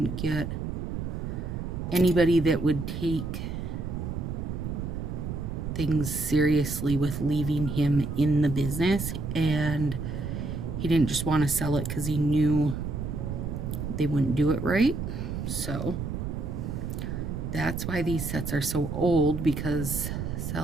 get anybody that would take things seriously with leaving him in the business, and he didn't just want to sell it because he knew they wouldn't do it right. So that's why these sets are so old, because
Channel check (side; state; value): right; noise; rumble, 4 dB below the sound